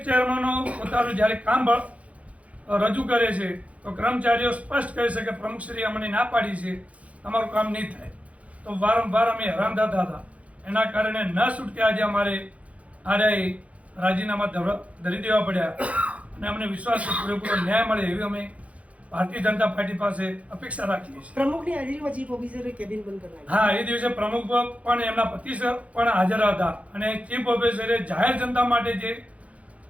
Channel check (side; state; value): left; late; 0.065 ms